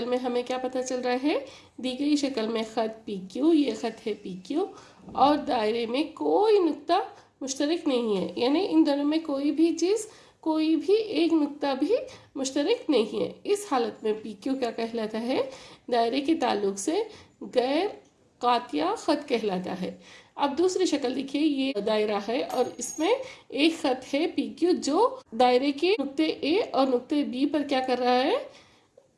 में हमें क्या पता चल रहा है, दी गई शक्ल में ख़त पी क्यू, ये ख़त है पी क्यू, और दायरे में कोई नुक्ता मुश्तरक नहीं है, यानी इन दोनों में कोई भी चीज़, कोई भी एक नुक्ता भी मुश्तरक नहीं है। इस हालत में पी क्यू क्या कहलाता है, दायरे के ताल्लुक से गैर कातिया ख़त कहलाता है। अब दूसरी शक्ल देखिए, ये दायरा है और इसमें एक ख़त है पी क्यू जो दायरे के नुक्ते ए और नुक्ते बी पर क्या कर रहा है,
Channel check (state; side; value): identical; both; correlation 1.00